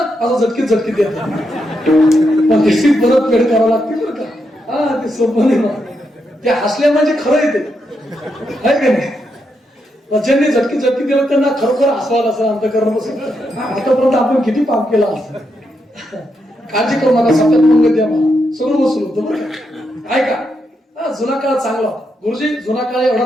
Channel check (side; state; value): both; normal; correlation 0.82